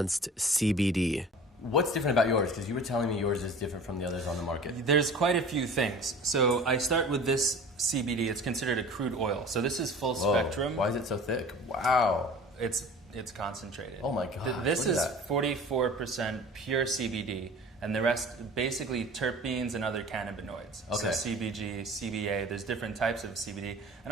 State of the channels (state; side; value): normal; both; correlation 0.42